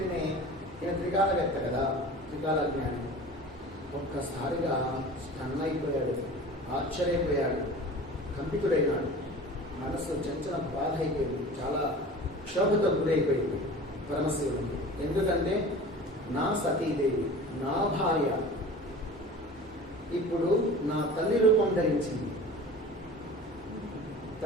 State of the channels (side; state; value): both; normal; correlation 0.39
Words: ఈయన త్రికాలవేత్త కదా, త్రికాల జ్ఞాని. ఒక్కసారిగా స్టన్ అయిపోయాడు, ఆశ్చర్యపోయాడు, కంపితుడైనాడు. మనసు చంచల బాధ అయిపోయింది, చాలా క్షోభతో గురైపోయింది పరమశివుడికి. ఎందుకంటే నా సతీదేవి, నా భార్య ఇప్పుడు నా తల్లి రూపం ధరించింది.